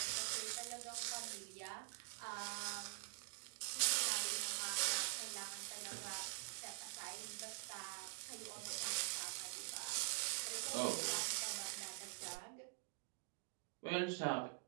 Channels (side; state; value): left; silent; digital silence